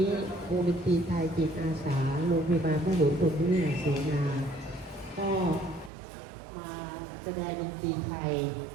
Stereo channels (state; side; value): drops out; left; at 5.9 s